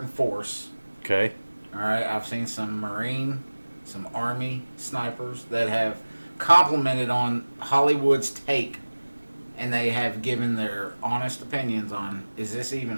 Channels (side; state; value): both; inverted; correlation -1.00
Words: force. Okay. All right, I've seen some Marine, some Army snipers that have complimented on Hollywood's take, and they have given their honest opinions on, is this even